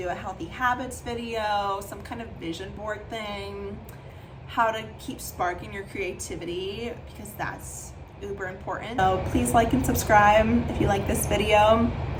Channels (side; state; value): both; identical; correlation 1.00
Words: a healthy habits video, some kind of vision board thing, how to keep sparking your creativity, because that's uber important. So please like and subscribe if you like this video.